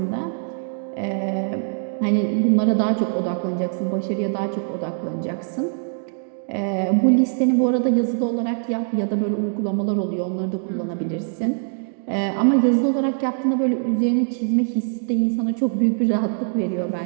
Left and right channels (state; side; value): silent; left; 64 dB below the other